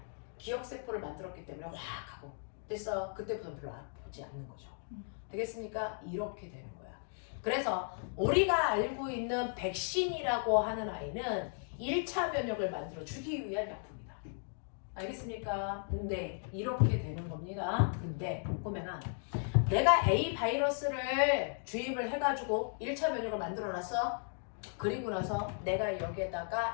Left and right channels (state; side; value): silent; right; 54 dB below the other